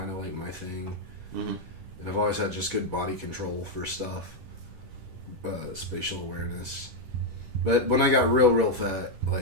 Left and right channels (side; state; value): left; late; 10 ms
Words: of, like, my thing. Mm-hmm. And I've always had just good body control for stuff. Spatial awareness. But when I got real fat,